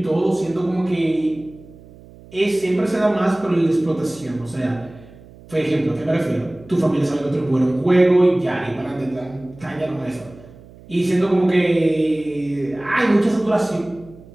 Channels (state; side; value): noise; right; hum, 22 dB below the sound